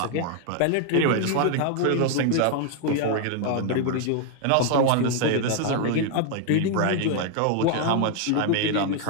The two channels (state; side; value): different; both; correlation 0.00